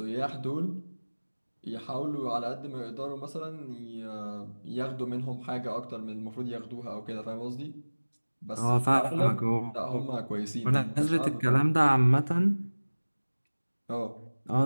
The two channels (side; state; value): both; inverted; correlation -1.00